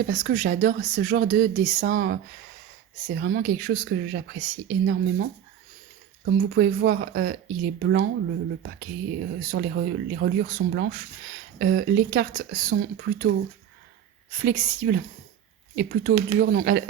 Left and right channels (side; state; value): left; quieter; 9.7 dB